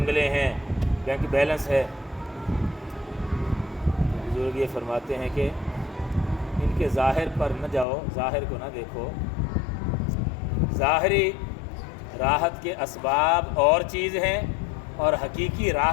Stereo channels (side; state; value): right; drops out; at 7.9 s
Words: ہیں، بینک بیلنس ہے۔ بزرگ یہ فرماتے ہیں کہ ان کے ظاہر پر نہ جاؤ، ظاہر کو نہ دیکھو، ظاہری راحت کے اسباب اور چیز ہیں، اور حقیقی